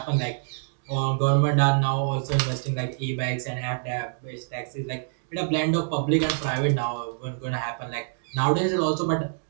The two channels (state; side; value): silent; left; digital silence